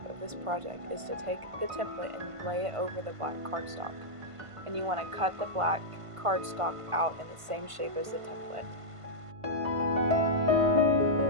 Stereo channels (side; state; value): left; late; 1.5 ms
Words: of this project is to take the template and lay it over the black cardstock. And you want to cut the black cardstock out in the same shape as the template.